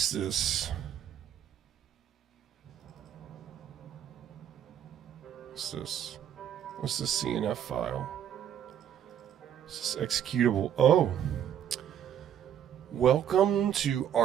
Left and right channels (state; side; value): quieter; left; 9.7 dB